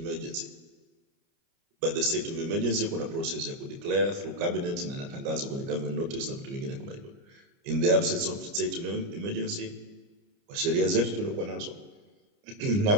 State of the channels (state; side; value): late; left; 29 ms